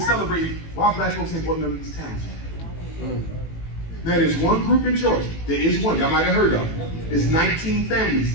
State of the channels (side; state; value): right; late; 18 ms